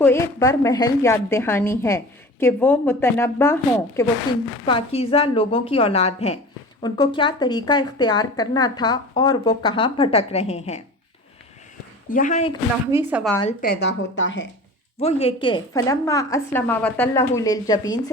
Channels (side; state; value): both; normal; correlation 0.37